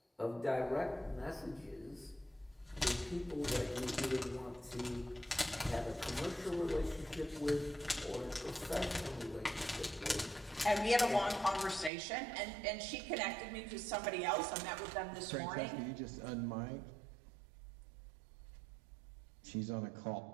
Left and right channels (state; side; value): drops out; left; at 11.9 s